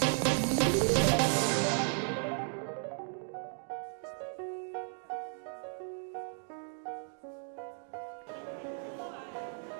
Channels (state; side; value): silent; left; 54 dB below the other